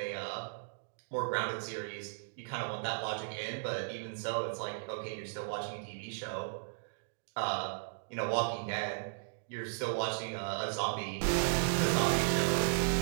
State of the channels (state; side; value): silent; left; digital silence